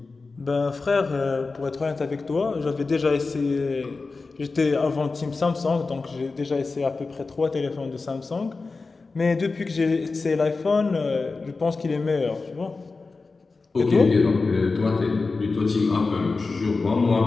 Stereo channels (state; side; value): quieter; right; 4.0 dB